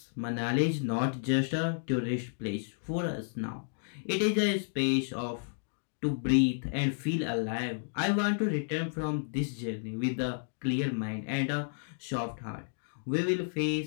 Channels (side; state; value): right; silent; digital silence